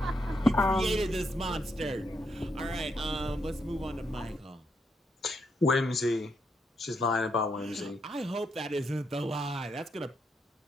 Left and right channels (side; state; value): both; normal; correlation 0.79